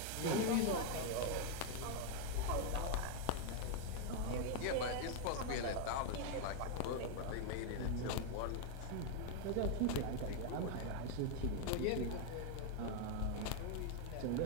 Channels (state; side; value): different; both; correlation 0.01